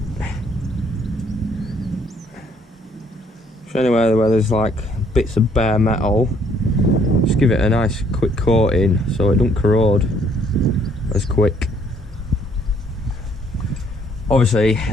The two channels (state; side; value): normal; both; correlation 0.65